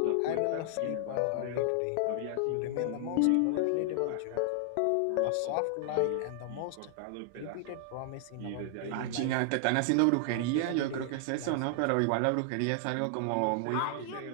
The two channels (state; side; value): different; both; correlation 0.00